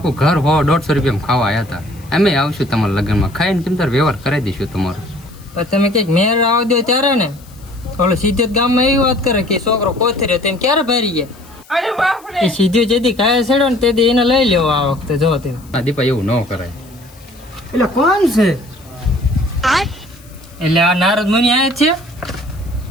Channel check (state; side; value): noise; left; hiss, 26 dB below the sound